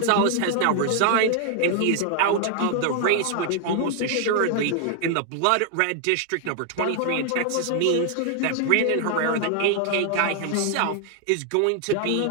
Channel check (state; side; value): different; both; correlation 0.00